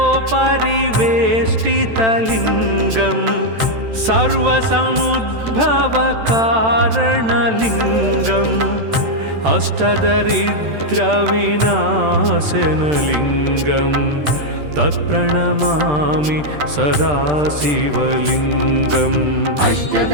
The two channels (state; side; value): late; left; 13 ms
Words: अष्टदलोपरिवेष्टितलिङ्गं सर्वसमुद्भवकारणलिङ्गम् अष्टदरिद्रविनाशनलिङ्गं तत्प्रणमामि सदा शिवलिङ्गम्